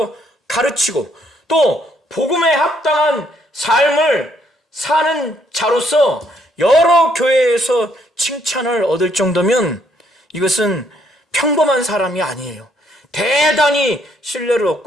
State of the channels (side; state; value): both; normal; correlation 0.70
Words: 가르치고 또 복음에 합당한 삶을 사는 자로서 여러 교회에서 칭찬을 얻을 정도면 이것은 평범한 사람이 아니에요. 대단히 신뢰를